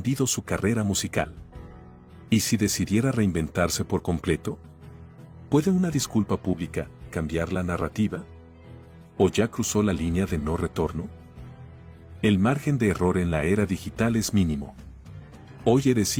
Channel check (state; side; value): identical; both; correlation 1.00